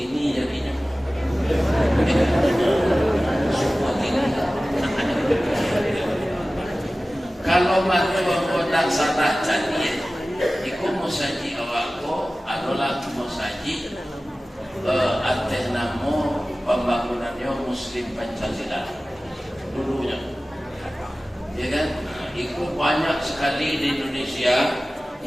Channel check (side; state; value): both; normal; correlation 0.97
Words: jadinya. Ya kan? Semua kini. Kalau mahu nak salah jadi, ikut musaji awakku adalah musaji atas nama pembangunannya Muslim Pancasila dulunya, ya kan? Itu banyak sekali di Indonesia